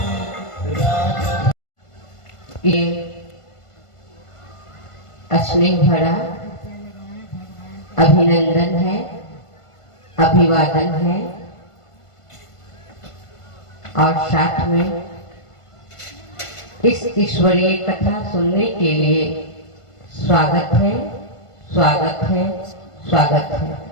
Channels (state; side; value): late; right; 1.5 ms